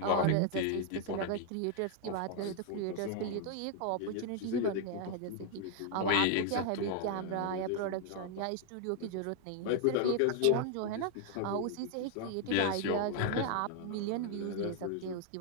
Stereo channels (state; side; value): different; both; correlation 0.00